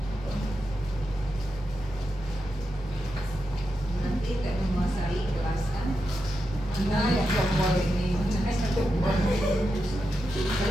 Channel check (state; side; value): normal; both; correlation 0.87